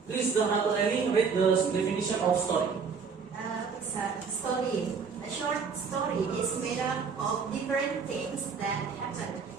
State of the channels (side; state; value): left; quieter; 5.7 dB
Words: please, Dr. Ellie, read the definition of story. Story. A short story is made up of different things that happen.